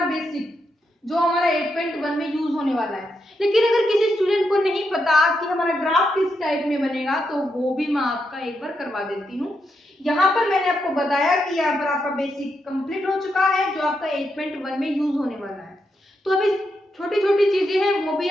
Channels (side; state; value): both; normal; correlation 0.83